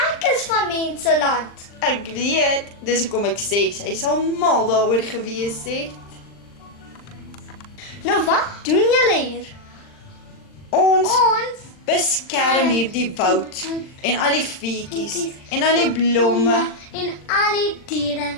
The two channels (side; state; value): right; late; 39 ms